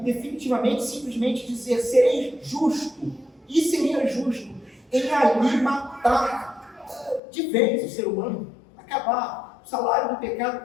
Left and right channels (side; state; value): right; drops out; at 7.2 s